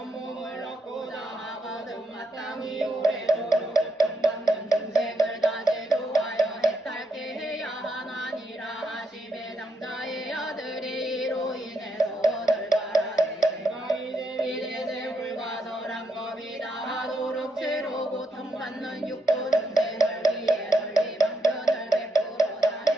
몸을 얻고자 하거든 마땅히 오래도록 고통받는 중생을 다 제도하여 해탈케 해야 하나니라 하시매 장자의 아들이 이로 인해서 원을 바라되 내가 이제 불가설한 법이다 하도록 죄로 고통받는 육도 중생을 위해 널리 방편을 베풀어다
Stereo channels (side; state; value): both; normal; correlation 0.80